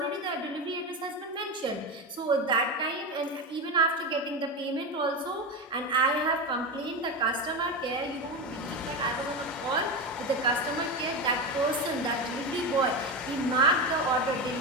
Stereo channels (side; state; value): both; normal; correlation 0.18